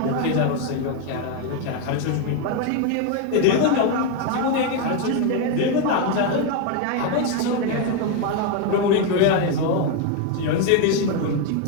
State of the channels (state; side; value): different; both; correlation 0.01